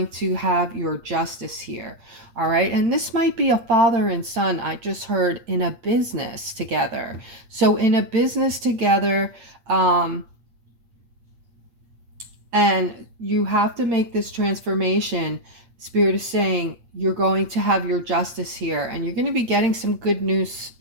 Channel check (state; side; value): late; left; 8.5 ms